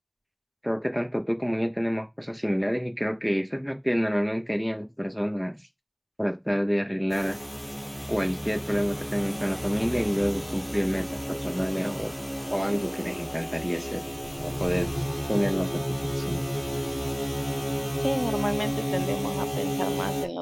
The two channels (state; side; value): identical; both; correlation 1.00